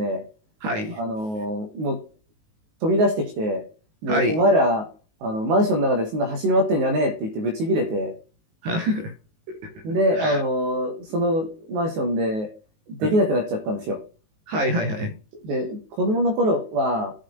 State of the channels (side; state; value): left; late; 19 ms